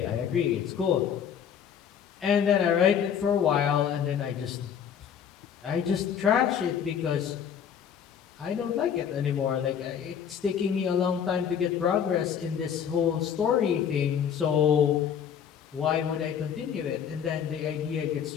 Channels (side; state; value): right; quieter; 8.2 dB